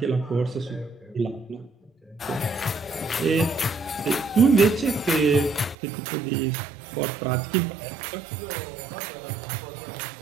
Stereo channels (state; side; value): drops out; left; at 5.8 s